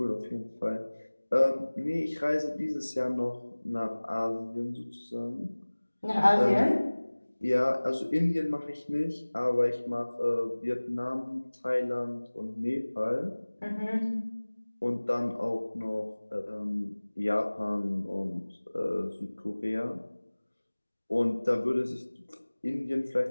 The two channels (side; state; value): both; inverted; correlation -1.00